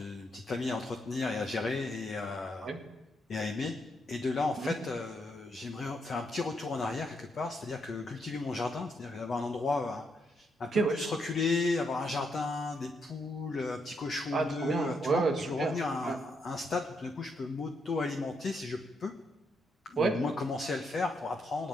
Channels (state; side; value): normal; both; correlation 0.78